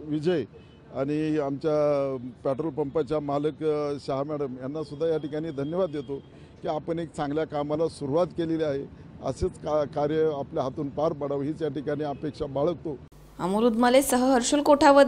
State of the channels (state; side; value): identical; both; correlation 1.00